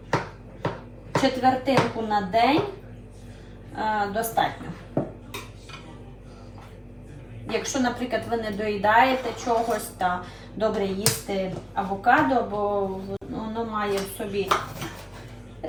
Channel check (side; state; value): both; identical; correlation 1.00